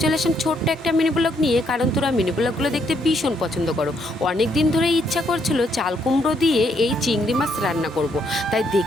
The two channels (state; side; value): normal; both; correlation 0.73